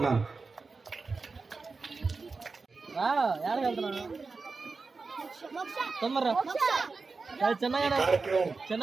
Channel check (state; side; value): quieter; left; 4.2 dB